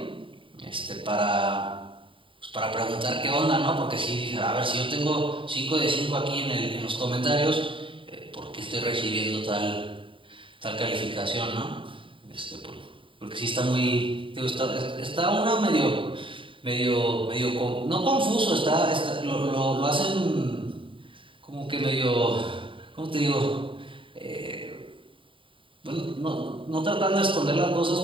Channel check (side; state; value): left; late; 0.25 ms